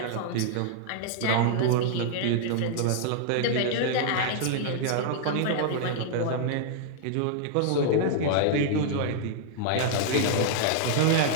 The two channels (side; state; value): both; different; correlation -0.01